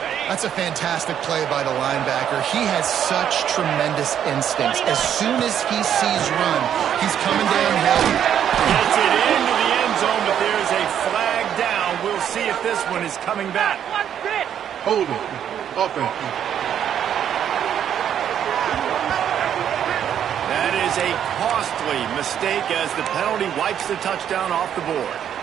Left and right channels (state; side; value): quieter; left; 9.4 dB